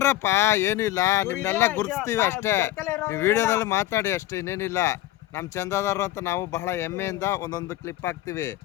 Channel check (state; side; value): quieter; right; 15.1 dB